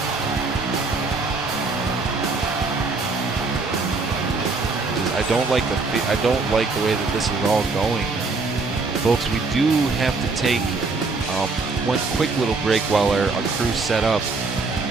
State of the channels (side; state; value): left; quieter; 3.9 dB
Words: I don't like the way that this is all going, folks. We do have to take one quick little break while our crew's set up.